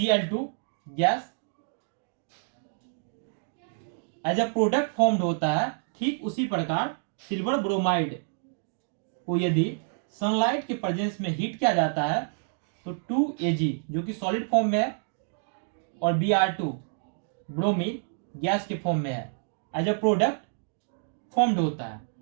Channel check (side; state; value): left; silent; digital silence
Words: gas as a product formed होता है, ठीक उसी प्रकार सिल्वर ब्रोमाइड को यदि सनलाइट के प्रेजेंस में हीट किया जाता है तो 2Ag जो कि सॉलिड फॉर्म में है और Br2 ब्रोमीन गैस के फॉर्म में है, एज अ प्रोडक्ट फॉर्म्ड होता है।